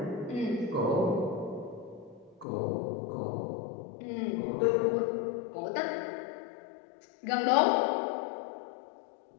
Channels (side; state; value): right; drops out; at 2.5 s